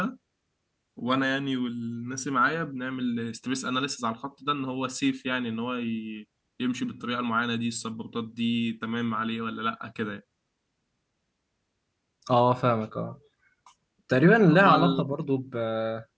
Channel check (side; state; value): both; identical; correlation 1.00